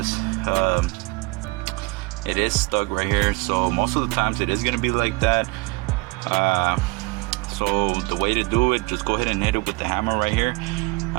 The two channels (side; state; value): left; quieter; 24.8 dB